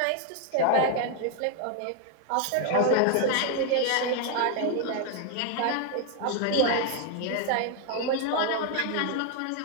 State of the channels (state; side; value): different; both; correlation 0.00